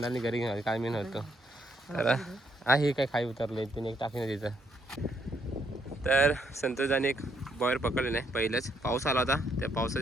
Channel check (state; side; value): normal; both; correlation 0.73